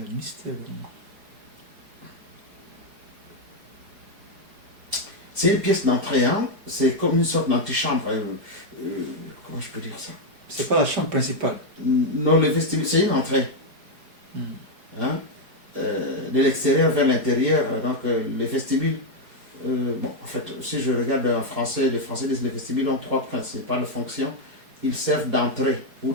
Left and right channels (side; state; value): left; late; 4.8 ms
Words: mystère. C'est une pièce d'entrée, c'est comme une sorte d'antichambre. Comment je peux dire ça? C'est pas la chambre principale. Non, le vestibule, c'est une entrée. De l'extérieur vers l'intérieur. Donc, les vestibules, en fait, si je regarde en français, les Français disent que les vestibules ont trois principales fonctions. Ils servent d'entrée ou